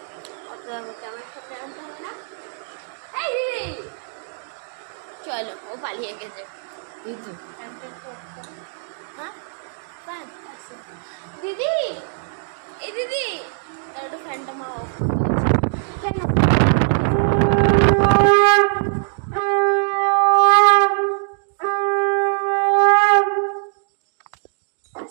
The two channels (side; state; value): left; silent; digital silence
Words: ক্যামেরার সামনে আনতে হবে না। এই দিদি চলো, ও পালিয়ে গেছে। হ্যাঁ দিদি, এই দিদি একটু ফ্যানটা মা অফ করতে গেছে। ফ্যান